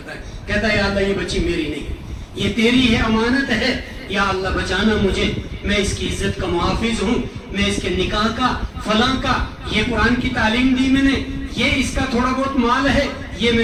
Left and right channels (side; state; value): both; identical; correlation 1.00